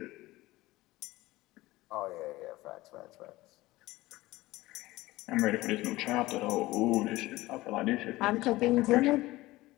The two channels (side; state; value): right; quieter; 18.5 dB